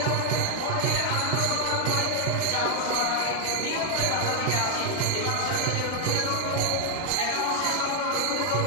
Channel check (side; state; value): both; different; correlation 0.00